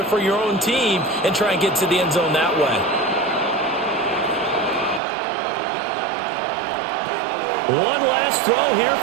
for your own team and try and get to the end zone that way. One last throw here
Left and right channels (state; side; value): drops out; left; at 5.0 s